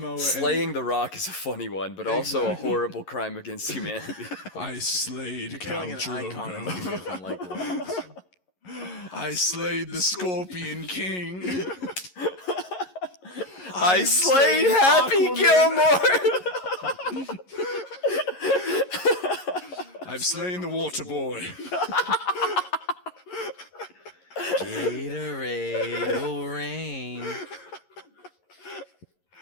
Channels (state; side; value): late; right; 11 ms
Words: Slaying the Rock is a funny one, but also a horrible crime against humanity. I slayed Khal Killing an icon in the Drogo. movie from like the Rocks. I slayed the Scorpion King. I slayed Happy Aquaman. Gilmore. I've slain the Water Boy. Gatorade will rain.